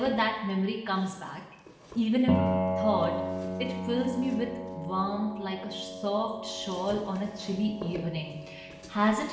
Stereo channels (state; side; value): identical; both; correlation 1.00